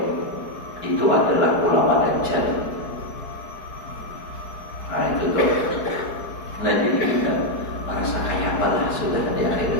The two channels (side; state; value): right; late; 4.7 ms